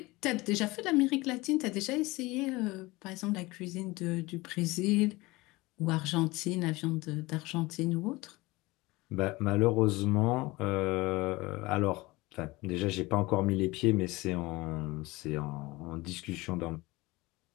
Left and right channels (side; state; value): right; quieter; 21.7 dB